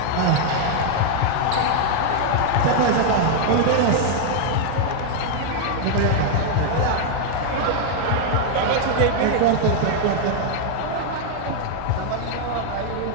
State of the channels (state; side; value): different; both; correlation 0.00